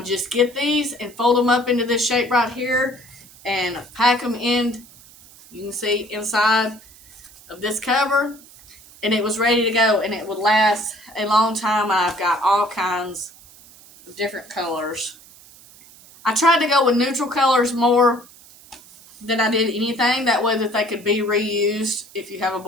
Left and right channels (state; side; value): noise; right; hiss, 23 dB below the sound